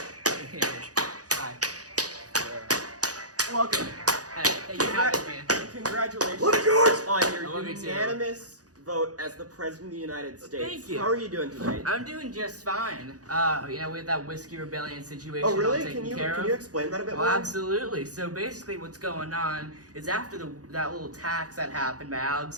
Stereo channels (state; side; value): late; left; 0.67 ms